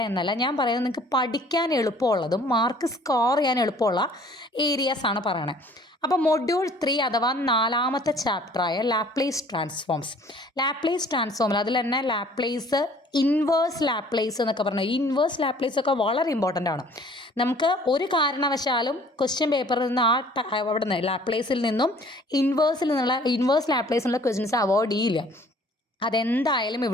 എന്നല്ല ഞാൻ പറയുന്നത്, നിങ്ങൾക്ക് പഠിക്കാൻ എളുപ്പമുള്ളതും മാർക്ക് സ്കോർ ചെയ്യാൻ എളുപ്പമുള്ള ഏരിയാസാണ് പറയണത്. അപ്പോൾ മൊഡ്യൂൾ 3 അഥവാ 4ാമത്തെ ചാപ്റ്ററായ ലാപ്ലേസ് ട്രാൻസ്ഫോംസ്. ലാപ്ലേസ് ട്രാൻസ്ഫോമിൽ അതിൽ തന്നെ ലാപ്ലേസ്, ഇൻവേഴ്സ് ലാപ്ലേസ് എന്നൊക്കെ പറഞ്ഞാൽ ഈ ഇൻവേഴ്സ് ലാപ്ലേസ് ഒക്കെ വളരെ ഇമ്പോർട്ടൻ്റ് ആണ്. നമുക്ക് ഒരു കാരണവശാലും ക്വസ്റ്റ്യൻ പേപ്പറിൽ നിന്ന് അവിടെ നിന്ന് ലാപ്ലേസിൽ നിന്നും ഇൻവേഴ്സ് ലാപ്ലേസിലുള്ള ക്വസ്റ്റ്യൻസ് അവോയ്ഡ് ചെയ്യില്ല. അതെന്തായാലും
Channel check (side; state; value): both; normal; correlation 0.54